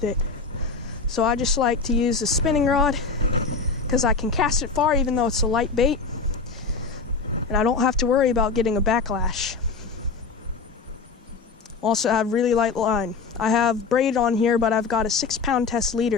it. So I just like to use a spinning rod, because I can cast it far even though it's a light bait, and I don't have to worry about getting a backlash. Also, I have really light line. I have braid on here, but I've got a 6-pound test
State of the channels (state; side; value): quieter; right; 4.6 dB